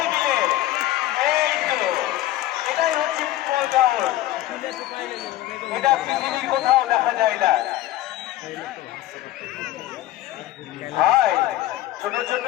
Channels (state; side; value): quieter; right; 15.1 dB